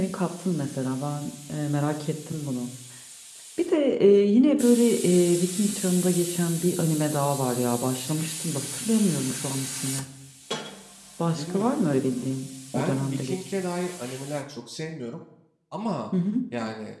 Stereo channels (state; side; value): identical; both; correlation 1.00